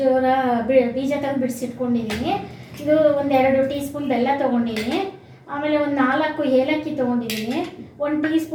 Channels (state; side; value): identical; both; correlation 1.00